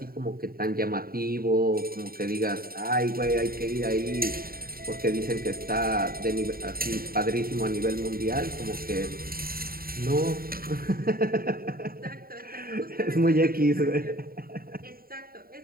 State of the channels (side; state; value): left; late; 0.43 ms